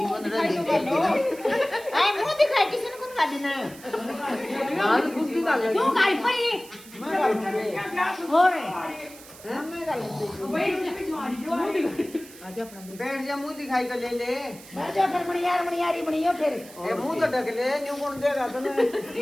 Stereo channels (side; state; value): right; noise; hiss, 19 dB below the sound